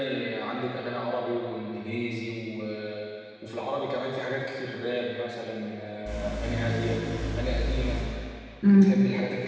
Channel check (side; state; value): both; identical; correlation 1.00